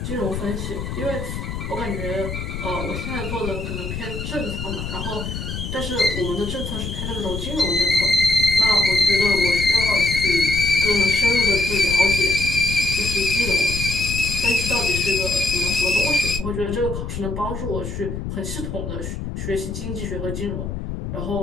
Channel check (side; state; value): left; noise; rumble, 6 dB below the sound